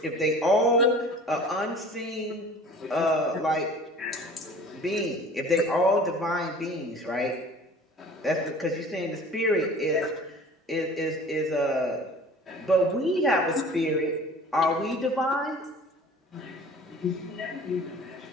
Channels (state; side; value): normal; both; correlation 0.45